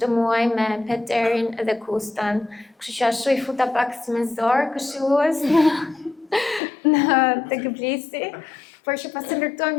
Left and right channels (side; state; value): right; drops out; at 6.6 s